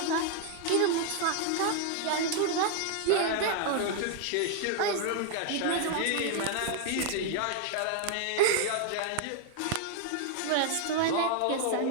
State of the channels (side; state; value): both; different; correlation 0.00